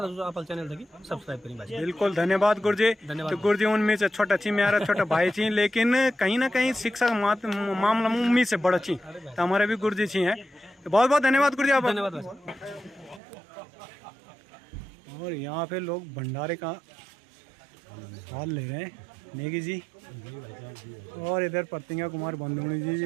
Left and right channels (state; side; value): drops out; left; at 13.2 s